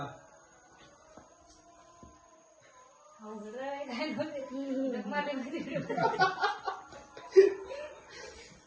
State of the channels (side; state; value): both; identical; correlation 1.00